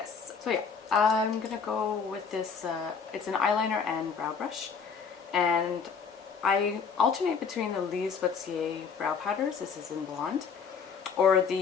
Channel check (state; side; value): quieter; right; 6.0 dB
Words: so yeah, I'm gonna go with this, it's an eyeliner and brow brush. And I alternate between the Mercier brow powders, this is in blonde, or